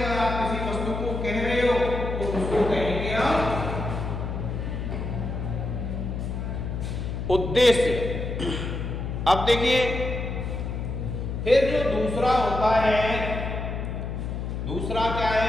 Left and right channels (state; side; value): noise; left; hum, 4 dB below the sound